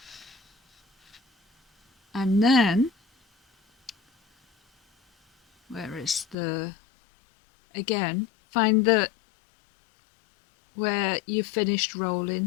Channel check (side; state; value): right; drops out; at 6.4 s